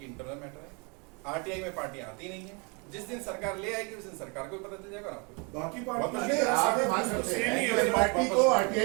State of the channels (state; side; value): quieter; left; 32.5 dB